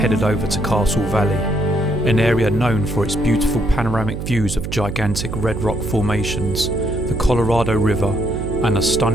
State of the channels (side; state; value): right; noise; hum, 5 dB below the sound